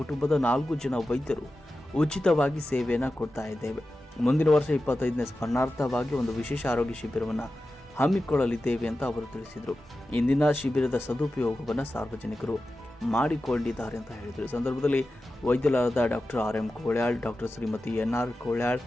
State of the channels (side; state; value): both; normal; correlation 0.93